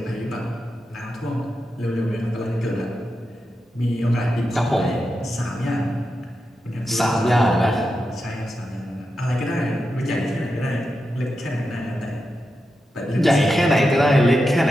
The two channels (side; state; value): both; normal; correlation 0.89